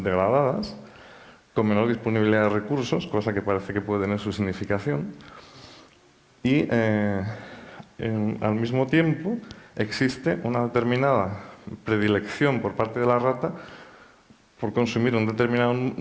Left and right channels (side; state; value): both; identical; correlation 1.00